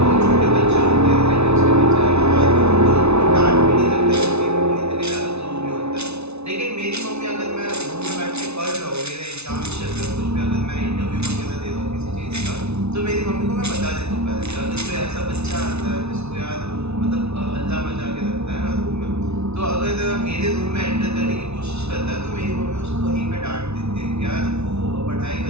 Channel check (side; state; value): left; late; 0.81 ms